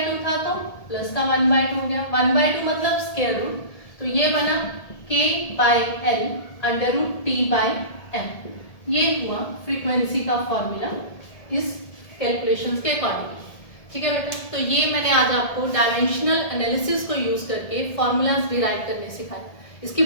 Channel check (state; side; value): late; right; 1.8 ms